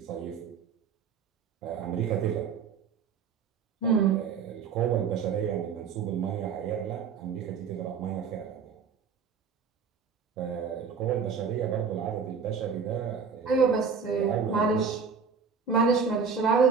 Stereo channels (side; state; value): left; quieter; 6.0 dB